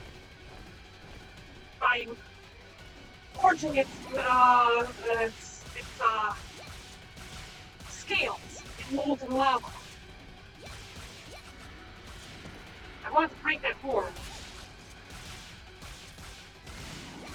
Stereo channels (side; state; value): both; identical; correlation 1.00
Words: by forging its scales in molten lava. I want to break that horn.